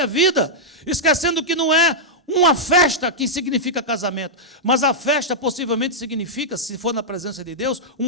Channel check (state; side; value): normal; both; correlation -0.08